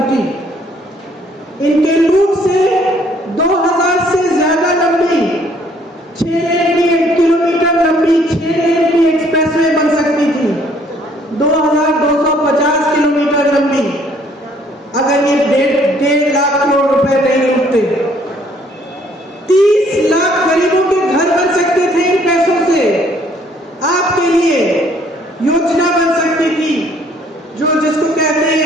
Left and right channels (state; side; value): normal; both; correlation 0.62